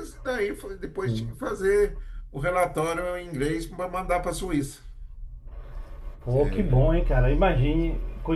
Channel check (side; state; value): both; identical; correlation 1.00